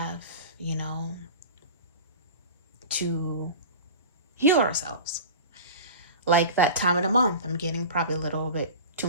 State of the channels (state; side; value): inverted; both; correlation -0.34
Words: you know, to heal ourselves. Like that time of the month, I'm getting probably a little bit too